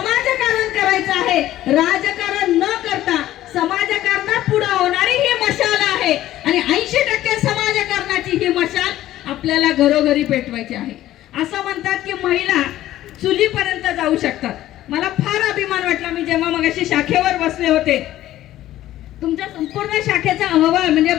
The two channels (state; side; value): quieter; right; 14.0 dB